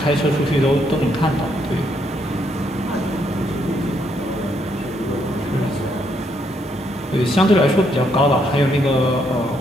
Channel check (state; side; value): normal; both; correlation 0.74